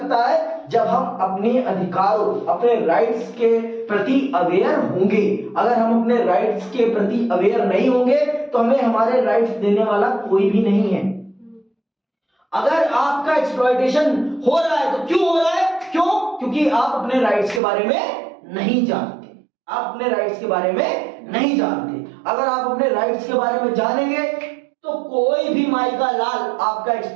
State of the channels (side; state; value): left; drops out; at 17.6 s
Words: है जब हम अपने अधिकारों, अपने राइट्स के प्रति अवेयर होंगे। अगर हम अपने राइट्स के प्रति अवेयर नहीं होंगे तो हमें हमारे राइट्स देने वाला कोई भी नहीं है। अगर आपका एक्सप्लॉयटेशन हो रहा है तो क्यों हो रहा है? क्योंकि आप अपने राइट्स के बारे में नहीं जानते। आप अपने राइट्स के बारे में नहीं जानते। अगर आप अपने राइट्स के बारे में जानेंगे तो कोई भी माई का लाल आपका